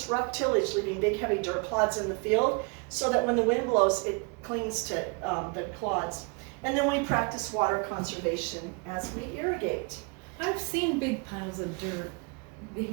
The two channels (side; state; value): left; quieter; 32.2 dB